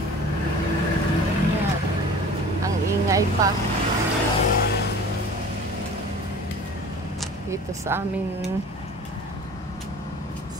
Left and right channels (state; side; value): normal; both; correlation 0.42